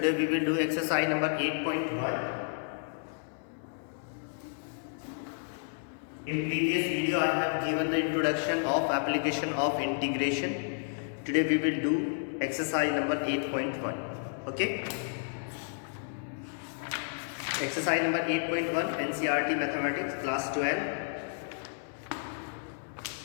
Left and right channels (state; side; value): silent; right; digital silence